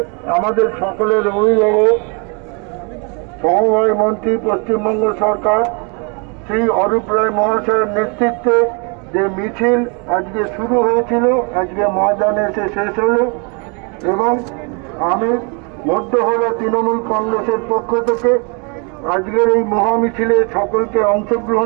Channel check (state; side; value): quieter; left; 34.1 dB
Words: আমাদের সকলের অভিভাবক সমবায় মন্ত্রী পশ্চিমবঙ্গ সরকার শ্রী অরূপ রায় মহাশয়ের নেতৃত্বে যে মিছিল আজকে শুরু হয়েছিল, আজকে ময়দানে এসে শেষ হলো এবং আমি মধ্য হাওড়া তৃণমূল কংগ্রেসের পক্ষ থেকে আজকের এই মহামিছিলে সকলকে